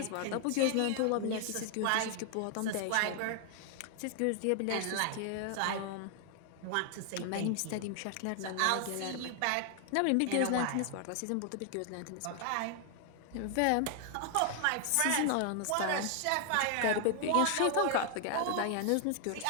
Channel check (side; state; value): both; different; correlation 0.00